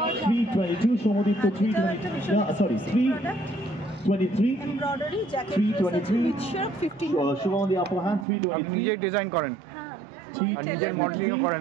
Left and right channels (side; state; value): left; drops out; at 8.2 s